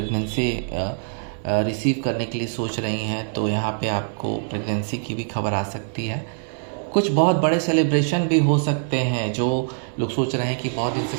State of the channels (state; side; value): silent; left; 63 dB below the other